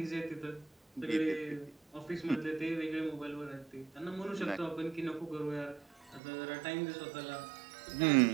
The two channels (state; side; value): drops out; left; at 6.2 s